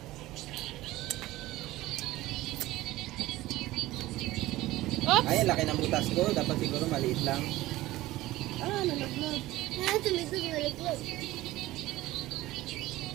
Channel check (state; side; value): quieter; left; 17.2 dB